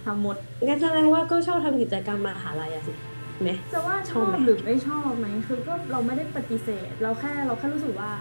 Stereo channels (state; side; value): inverted; both; correlation -1.00